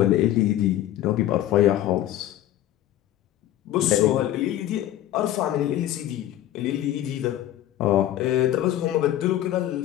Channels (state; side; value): quieter; right; 13.3 dB